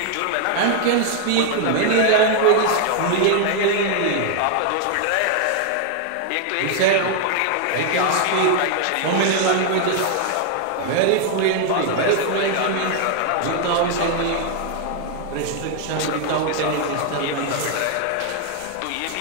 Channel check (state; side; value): different; both; correlation 0.00